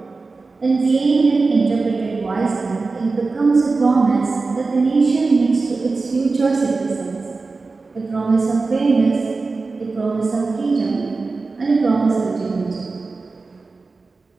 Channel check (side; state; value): left; quieter; 3.9 dB